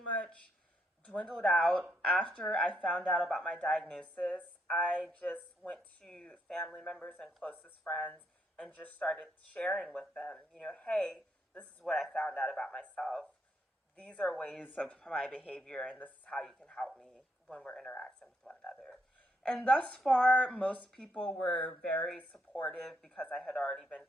dwindled out after I found out about my diagnosis. I just went to family members and closest friends and just started sharing with them, hey, this is what I found out about myself. These are ways of my behavior, and this is how you can help me when we're interacting with one another. And thus far, most people were very supportive because I had already been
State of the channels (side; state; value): both; normal; correlation 0.76